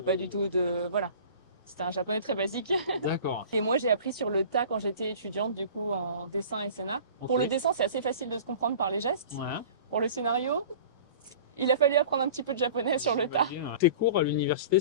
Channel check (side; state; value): both; inverted; correlation -0.42